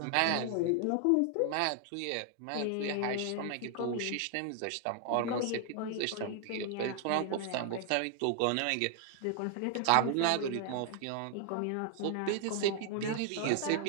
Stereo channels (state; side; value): different; both; correlation 0.00